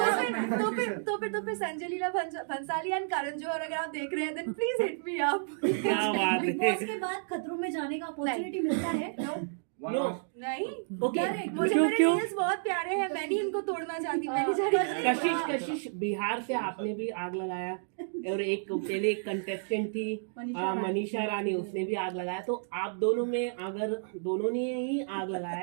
तो फिर संजय लीला भंसाली एंड करण जौहर अगर आप देख रहे हैं, then please hit me up. क्या बात बिग है। बॉस के बाद खतरों में जाने का अपॉर्चुनिटी मिलता है? नो नहीं, ओके, मुझे मेरे रील्स बहुत प्यारे हैं, मैं नहीं इनको तोड़ना चाहती, मैं नहीं चाहती। कशिश बिहार से आपने भी आग लगाया, और एक पहले एक कंटेस्टेंट थी मनीषा रानी, उसने भी आग लगाया। तो आप दोनों में अगर दोनों ने ही आग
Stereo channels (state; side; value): silent; left; digital silence